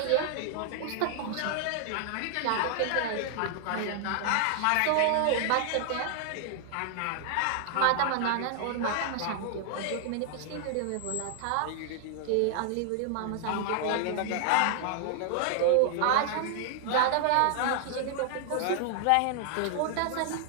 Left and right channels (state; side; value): different; both; correlation 0.00